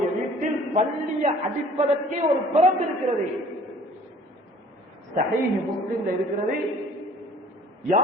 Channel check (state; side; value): normal; both; correlation 0.52